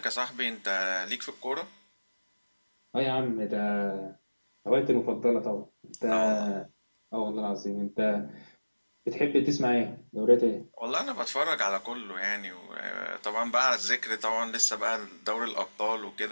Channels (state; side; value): inverted; both; correlation -1.00